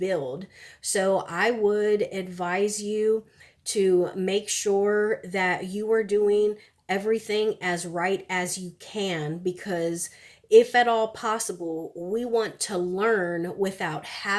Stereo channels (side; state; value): both; identical; correlation 1.00